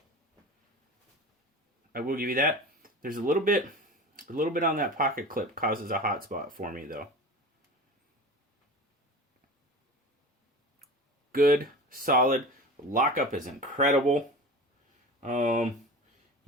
I will give you that. There's a little bit on that pocket clip causes a hot spot for me though. Good, solid. Lockup is incredible.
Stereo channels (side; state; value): both; normal; correlation 0.34